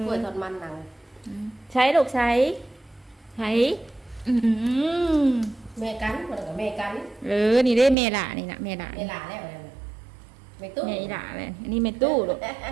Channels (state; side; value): drops out; left; at 8.0 s